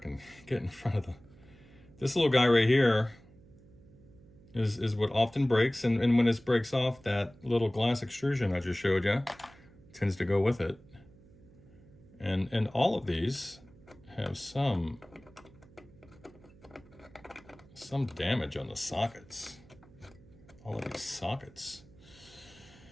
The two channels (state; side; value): noise; right; hum, 24 dB below the sound